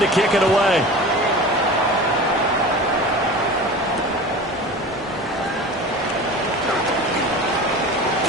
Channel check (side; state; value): both; normal; correlation 0.35